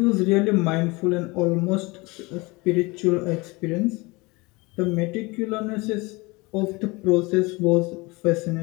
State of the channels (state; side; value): quieter; right; 24.8 dB